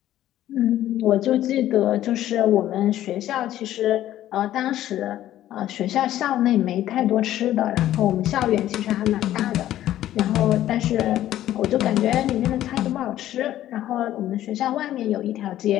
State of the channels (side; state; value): right; quieter; 13.1 dB